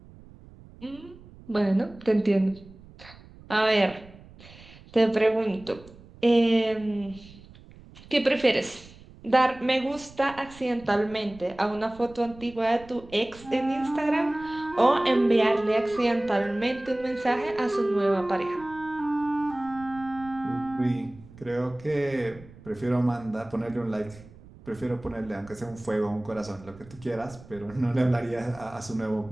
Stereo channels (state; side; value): noise; right; rumble, 21 dB below the sound